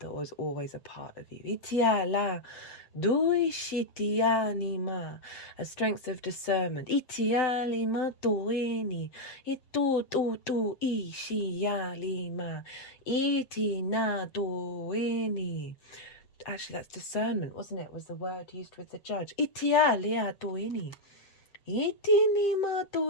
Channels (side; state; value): right; late; 7.8 ms